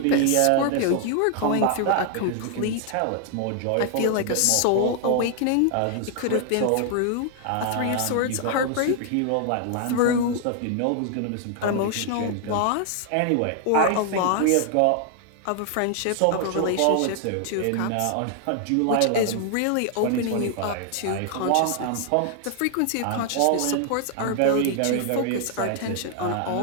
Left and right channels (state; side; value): different; both; correlation 0.00